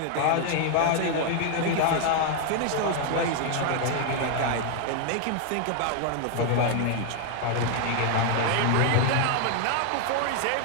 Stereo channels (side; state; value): both; different; correlation 0.00